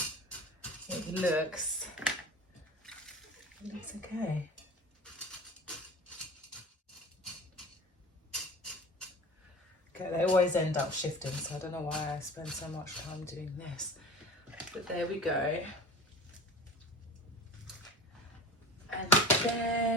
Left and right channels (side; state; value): both; normal; correlation 0.36